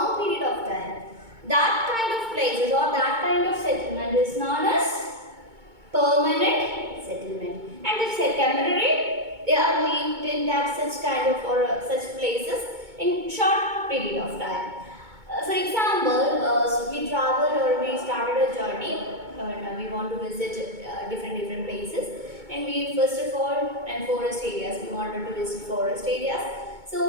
period of time, that kind of places or that kind of settlement is known as permanent settlement. And if say temporary, they are lived in that such kind of or such places in short period of time. For example, we traveled or we started a journey and we want to visit different places, and we first of all and forest areas, we wanted to visit forest areas.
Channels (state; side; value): late; left; 2.2 ms